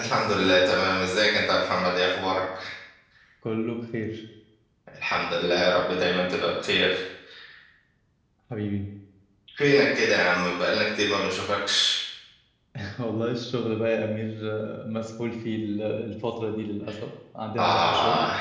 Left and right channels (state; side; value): identical; both; correlation 1.00